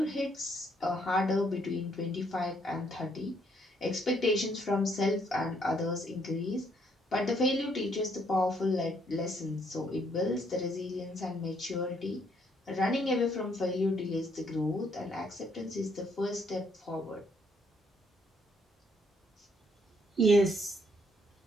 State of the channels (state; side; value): normal; both; correlation 0.70